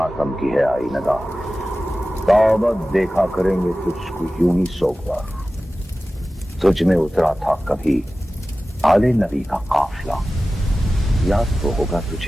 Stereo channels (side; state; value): both; normal; correlation 0.96